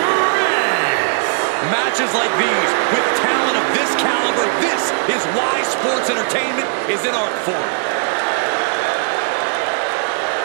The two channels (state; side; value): silent; left; digital silence